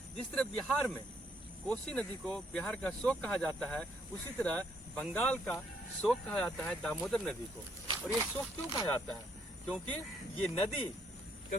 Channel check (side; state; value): both; normal; correlation 0.70